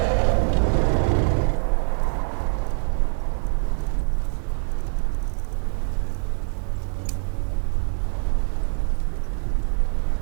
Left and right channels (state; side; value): silent; left; digital silence